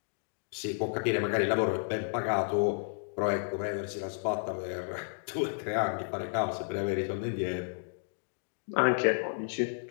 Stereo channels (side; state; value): right; silent; digital silence